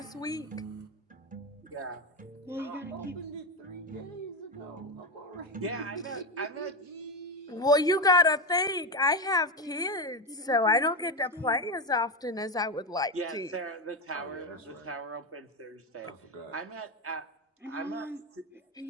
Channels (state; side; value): normal; both; correlation 0.13